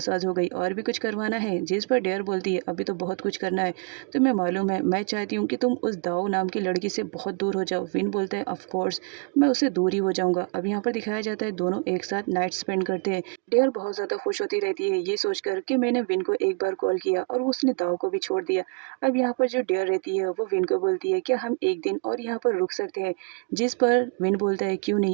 हो गई, और भी कुछ करवाना है? जिस पर डियर बोलती है अभी तो बहुत कुछ करना है, तुम्हें मालूम है मैं चाहती हूँ कि तुम उस दाऊ नाम की लड़की से बहुत दूर हो जाओ। विन बोलता है ऑफ कोर्स मैं उससे दूर ही हो जाऊँगा। अब यहाँ पर दिखाया जाता है दोनों एक साथ नाइट स्पेंड करते हैं। डियर बहुत ज़्यादा खुश होती रहती है ये सोचकर कि मैंने विन को एक बार कॉल किया और उसने दाऊ को भी छोड़ दिया। अब यहाँ पर जो डियर रहती है वो विन को बोलती है क्या हम एक दिन और यहाँ पर रुक सकते हैं? जिस पर विन बोलता है क्यों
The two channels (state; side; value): quieter; left; 36.1 dB